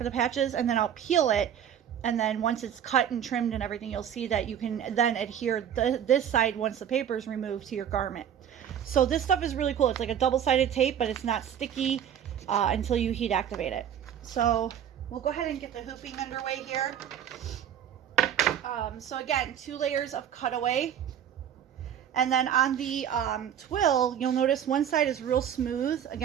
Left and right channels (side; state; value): left; quieter; 9.4 dB